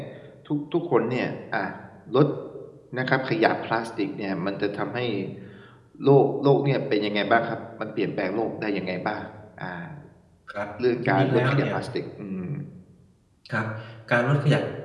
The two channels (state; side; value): identical; both; correlation 1.00